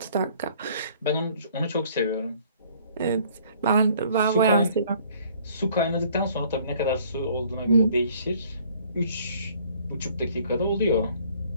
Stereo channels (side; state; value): both; inverted; correlation -0.58